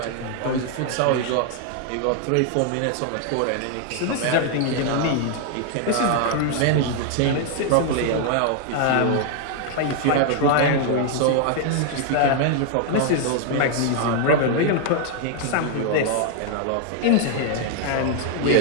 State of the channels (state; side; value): different; both; correlation 0.00